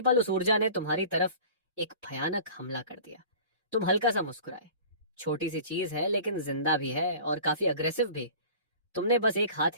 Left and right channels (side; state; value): both; inverted; correlation -0.42